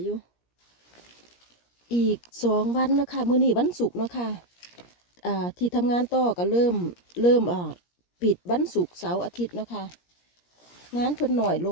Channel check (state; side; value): late; right; 17 ms